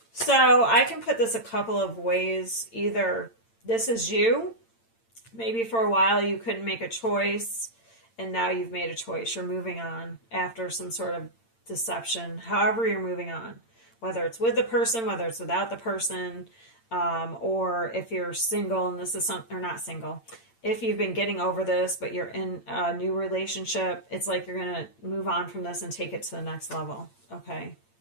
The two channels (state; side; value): late; right; 8.8 ms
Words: So I can put this a couple of ways. Either this is you. Maybe for a while you couldn't make a choice. And now you've made a choice. You're moving on after some sort of deception. However you're moving on. Whether it's with the person, whether it's without the person. Or if you're single and this is something, or not single. If you've been getting over this, but you're in a new relationship, it's like you're going to move on from this and take it to the next level. Okay.